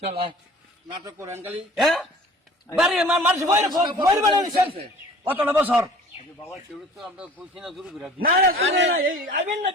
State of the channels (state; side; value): normal; both; correlation 0.47